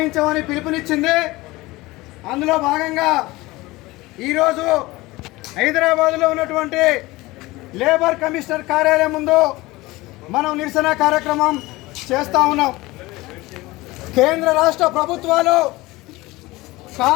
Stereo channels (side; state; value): right; quieter; 20.4 dB